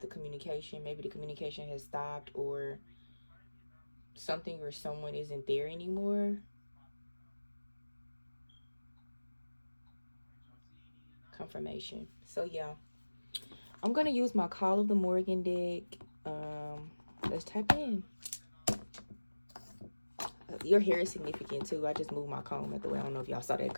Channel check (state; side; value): inverted; both; correlation -1.00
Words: the communication. Maybe the communication has stopped, or something or someone isn't there anymore. Confirmation. So yeah, I'm gonna use my Call of the Morgan deck. Let's type it in. Your hair is significant too. I just moved my comb out the way. I don't know if y'all saw that